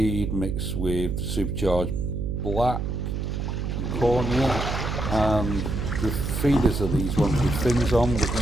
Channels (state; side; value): noise; right; hum, 2 dB below the sound